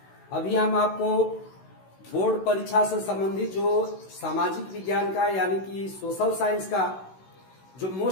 अभी हम आपको बोर्ड परीक्षा से संबंधित जो सामाजिक विज्ञान का यानी कि सोशल साइंस का जो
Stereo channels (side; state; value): right; late; 16 ms